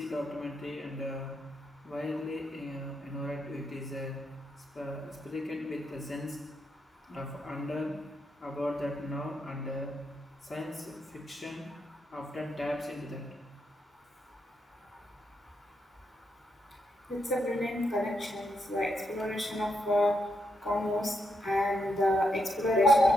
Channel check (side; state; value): both; normal; correlation 0.81